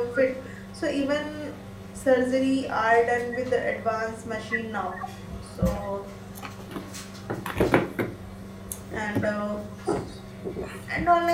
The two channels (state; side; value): identical; both; correlation 1.00